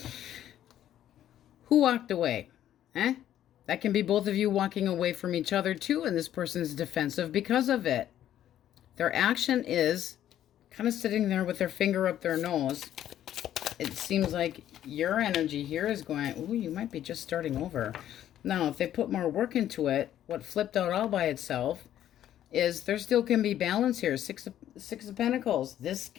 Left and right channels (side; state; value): right; quieter; 11.5 dB